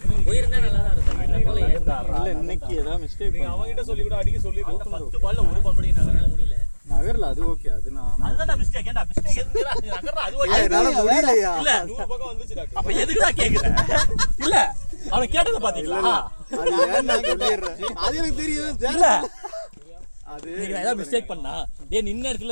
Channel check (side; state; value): both; inverted; correlation -1.00